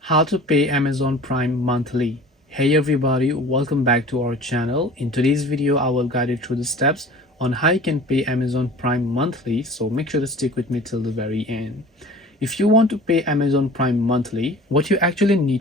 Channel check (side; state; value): both; normal; correlation 0.43